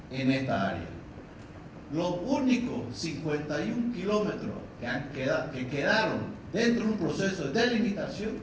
en esta área. Los únicos 51 kilómetros que quedaron dentro de un proceso de delimitación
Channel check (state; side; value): identical; both; correlation 1.00